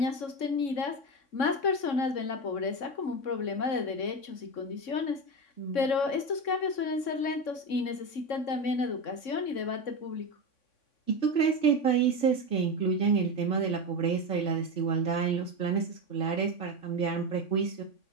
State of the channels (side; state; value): right; late; 3.6 ms